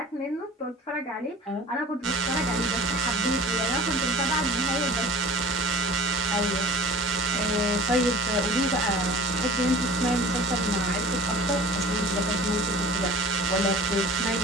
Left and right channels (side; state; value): both; normal; correlation 0.43